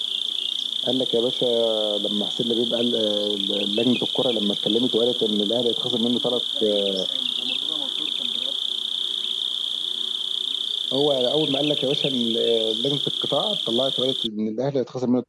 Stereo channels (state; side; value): identical; both; correlation 1.00